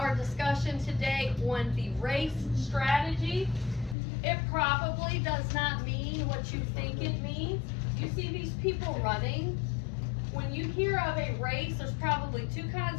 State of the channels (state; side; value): drops out; right; at 4.0 s